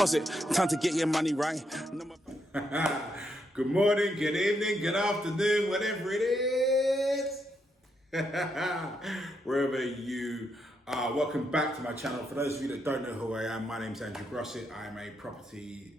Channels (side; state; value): both; normal; correlation 0.79